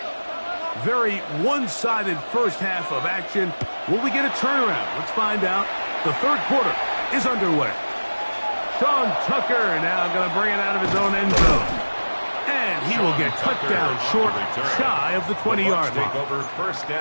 Very one-sided first half of action. Will we get a turnaround? Let's find out. The third quarter is underway. Sean Tucker now going to bring it out of his own end zone. And he will get cut down short, shy of the 20-yard line. Take over first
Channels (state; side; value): inverted; both; correlation -1.00